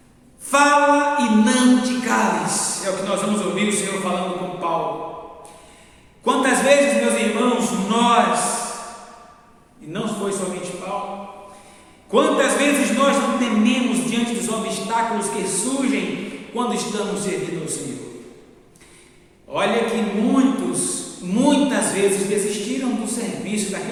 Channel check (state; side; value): identical; both; correlation 1.00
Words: Fala e não te cales, é o que nós vamos ouvir o Senhor falando com Paulo. Quantas vezes, meus irmãos, nós, e não foi somente Paulo, quantas vezes nós não tememos diante dos obstáculos que surgem quando estamos servindo ao Senhor? Olha que muitas vezes desistiram do serviço,